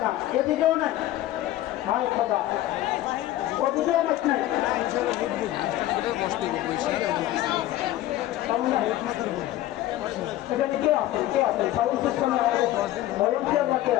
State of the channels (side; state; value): right; quieter; 14.6 dB